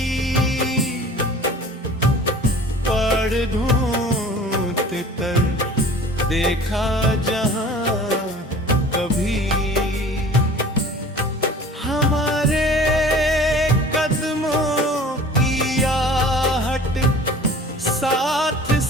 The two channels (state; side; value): normal; both; correlation 0.45